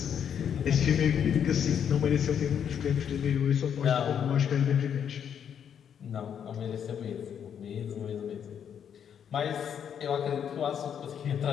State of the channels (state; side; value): quieter; right; 8.3 dB